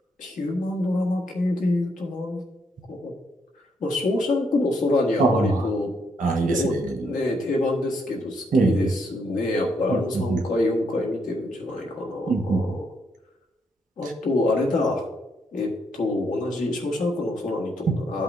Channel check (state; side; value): normal; both; correlation 0.75